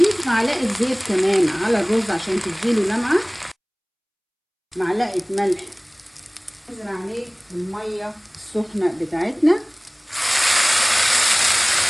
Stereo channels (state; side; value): identical; both; correlation 1.00